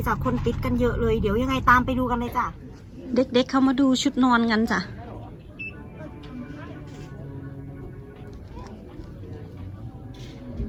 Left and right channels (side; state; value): both; identical; correlation 1.00